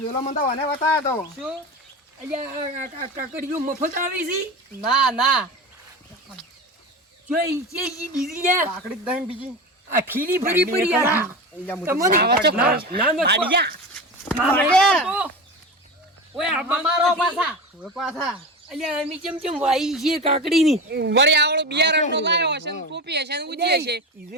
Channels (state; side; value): normal; both; correlation 0.25